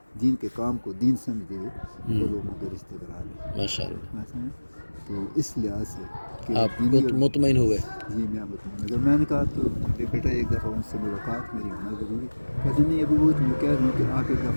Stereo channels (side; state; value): both; inverted; correlation -1.00